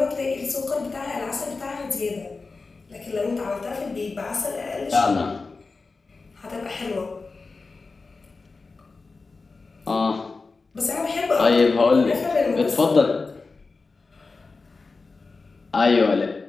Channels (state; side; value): quieter; right; 4.1 dB